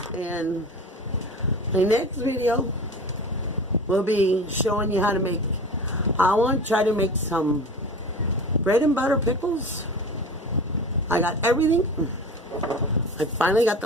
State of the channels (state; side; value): normal; both; correlation 0.35